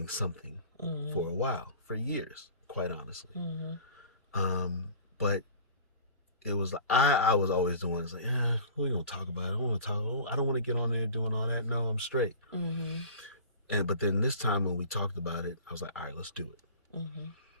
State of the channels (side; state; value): both; inverted; correlation -0.41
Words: something for a while, for years, quite honestly. But it was I was always the one that's like, we gonna talk about it. I don't want to get on there doing all that. No, I'm straight. But then this time when we talked about it, I was like, all right, let's do it.